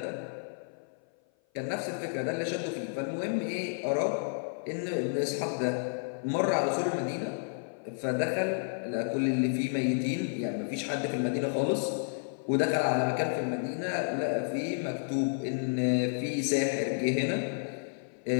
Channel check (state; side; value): silent; right; 55 dB below the other